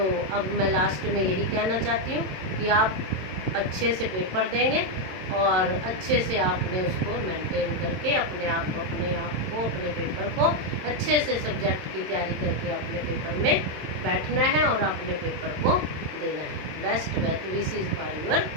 अब मैं लास्ट में यही कहना चाहती हूँ कि आप अच्छे से पेपर देंगे, और अच्छे से आपने उसको मेंटेन करके अपने पेपर को अच्छे से सब्जेक्ट की तैयारी करके अपने पेपर में बैठना है और अपने पेपर को देना है। Best wishes for your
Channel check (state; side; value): late; left; 27 ms